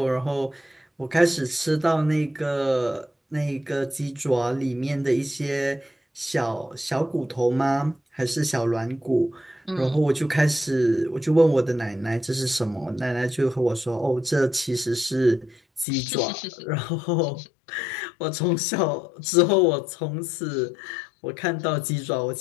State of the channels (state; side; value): drops out; right; at 15.9 s